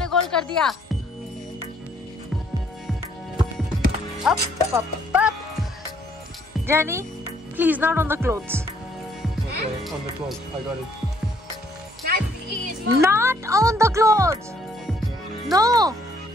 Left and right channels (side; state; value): both; normal; correlation 0.66